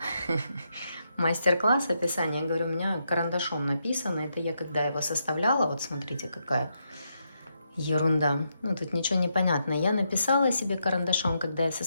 мастер-класс описание, я говорю, у меня карандашом написано. Это я когда его составляла, вот смотрите, какая ерунда. Ну, тут ничего не понятно. Я написала себе карандашом, когда я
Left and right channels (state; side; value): inverted; both; correlation -0.81